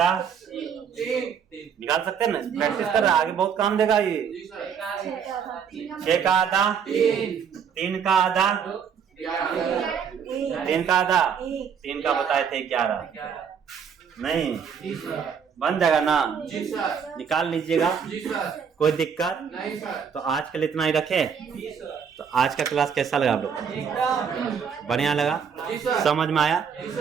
निकाल सकते हैं ना, प्रैक्टिस कर रहा, आगे बहुत काम देगा ये। 6 का आधा 3 का आधा 3 का आधा 3 का बताए थे 11 नहीं बन जाएगा ना, निकाल लीजिएगा, कोई दिक्कत नहीं सर। तो आज के लिए इतना ही रखे। तो आज का क्लास कैसा लगा आप लोग को? बढ़िया लगा? समझ में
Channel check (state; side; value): quieter; left; 7.1 dB